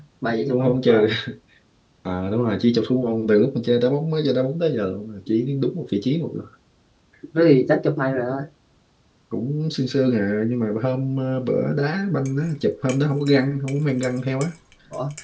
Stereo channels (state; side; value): identical; both; correlation 1.00